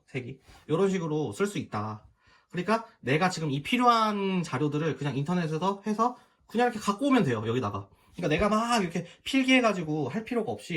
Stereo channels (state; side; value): identical; both; correlation 1.00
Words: 색이. 이런 식으로 쓸 수 있다. 그러니까 내가 지금 이 필요한 자료들을 그냥 인터넷에서 해서 그냥 이렇게 갖고 오면 돼요, 여기다가. 그러니까 내가 막 이렇게 필기해가지고 할 필요가